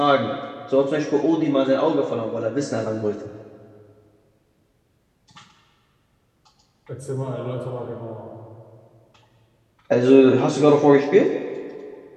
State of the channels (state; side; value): identical; both; correlation 1.00